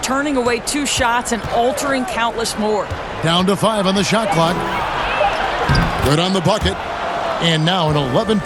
away 2 shots and altering countless more. Down to 5 on the shot clock. Good on the bucket. And now an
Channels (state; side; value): identical; both; correlation 1.00